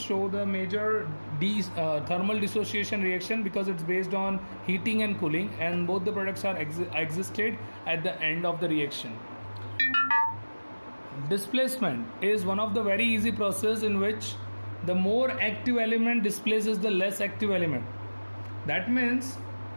show the major thermal dissociation reaction, because it's based on heating and cooling, and both the products are existed at the end of the reaction. Displacement is one of the very easy process in which the more active element displaces the less active element. That means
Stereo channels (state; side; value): inverted; both; correlation -1.00